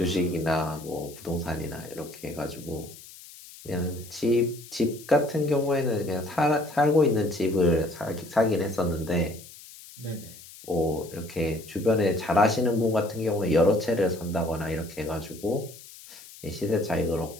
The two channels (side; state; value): left; noise; hiss, 18 dB below the sound